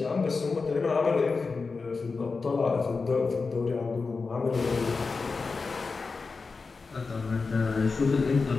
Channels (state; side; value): quieter; right; 4.4 dB